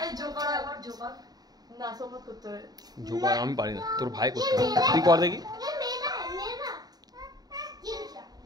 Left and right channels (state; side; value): late; left; 0.19 ms